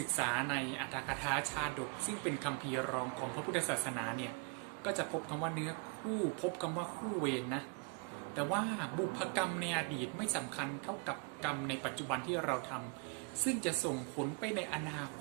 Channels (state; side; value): quieter; left; 33.3 dB